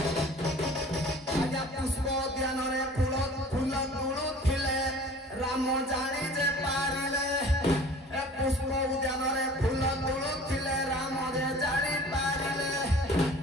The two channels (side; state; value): both; normal; correlation 0.46